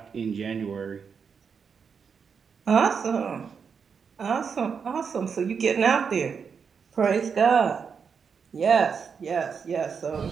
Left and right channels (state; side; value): quieter; left; 6.2 dB